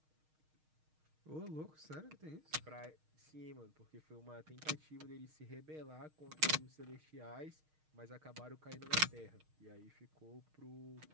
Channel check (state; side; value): late; left; 6.4 ms